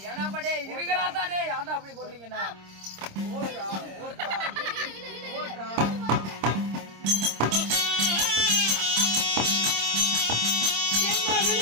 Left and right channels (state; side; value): late; left; 26 ms